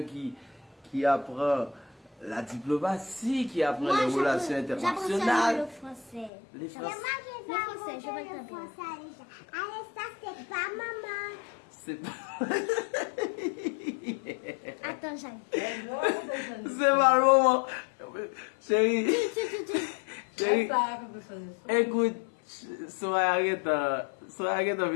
qui apprend la diplomatie, qui apprend les relations internationales. Le français. Les français. Le français, je vais le français. Allez, ça c'est pas maman. C'est pas... Attends, j'arrive. C'est pas le moment. Chérie. Chérie. Écoute, Soraya Arrête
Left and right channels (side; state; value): right; drops out; at 6.3 s